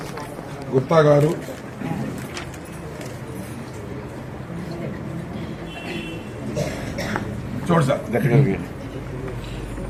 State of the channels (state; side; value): identical; both; correlation 1.00